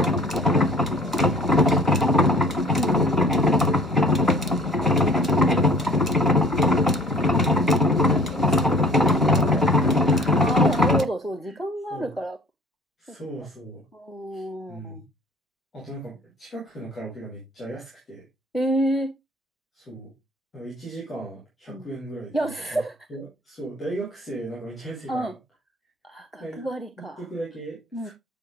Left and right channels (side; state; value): both; normal; correlation 0.51